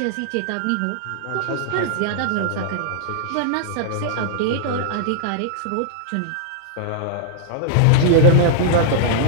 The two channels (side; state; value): both; different; correlation -0.01